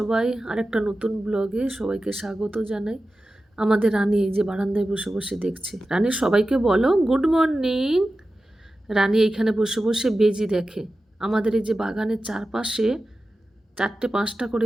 আরেকটা নতুন ব্লগে সবাইকে স্বাগত জানাই। আমাদের রানী এই যে বারান্দায় বসে বসে দেখছে। রানী সবাইকে বলো গুড মর্নিং। রানী এইখানে বসে বসে বেজি দেখে। আমাদের এই যে বাগানের চারপাশে 4-5টা করে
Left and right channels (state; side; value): normal; both; correlation 0.94